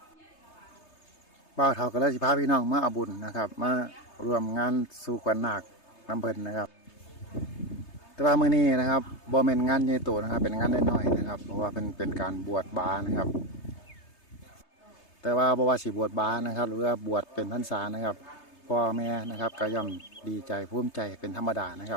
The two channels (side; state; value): right; late; 3.3 ms